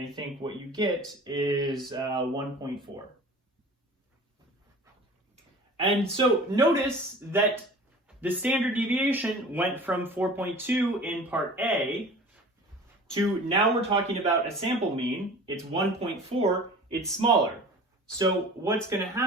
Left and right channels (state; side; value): normal; both; correlation 0.41